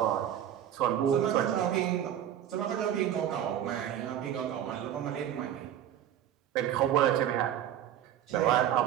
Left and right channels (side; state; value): left; quieter; 10.6 dB